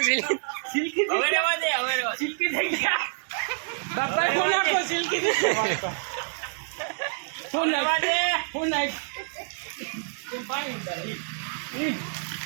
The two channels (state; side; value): silent; left; digital silence